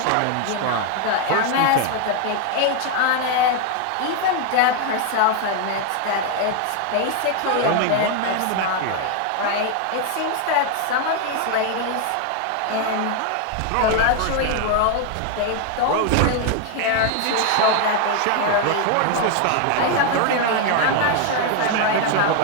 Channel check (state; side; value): different; both; correlation 0.01